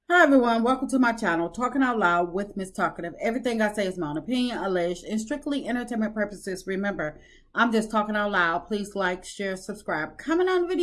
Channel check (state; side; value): identical; both; correlation 1.00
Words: Hi everyone, welcome to my channel, Talking Out Loud with Miss Talkative. Everything I say is my own opinion, alleged, and strictly entertainment purposes. Remember, I'm just talking out loud. Please like, share, subscribe. Comment on the